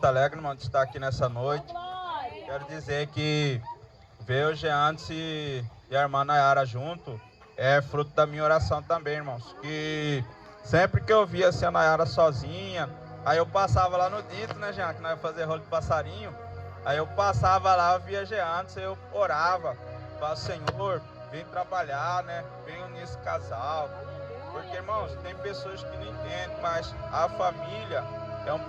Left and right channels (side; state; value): both; identical; correlation 1.00